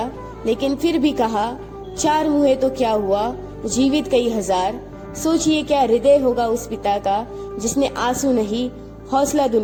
लेकिन फिर भी कहा 4 हुए तो क्या हुआ, जीवित कई हजार, सोचिए क्या हृदय होगा उस पिता का जिसने आंसू नहीं हौसला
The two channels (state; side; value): identical; both; correlation 1.00